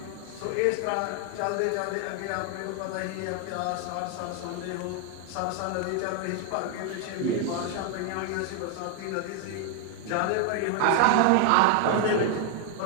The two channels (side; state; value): both; different; correlation 0.01